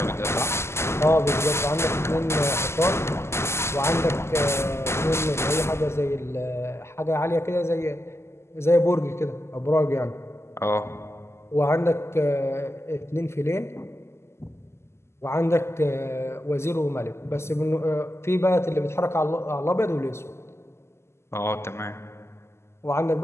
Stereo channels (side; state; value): right; late; 0.13 ms